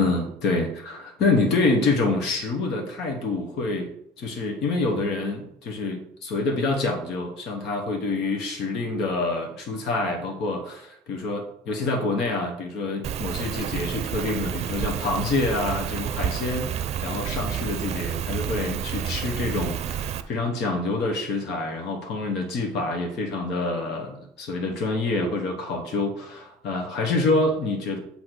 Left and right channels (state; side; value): normal; both; correlation 0.38